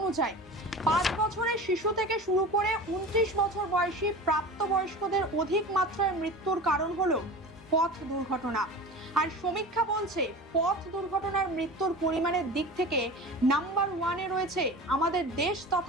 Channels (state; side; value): normal; both; correlation 0.34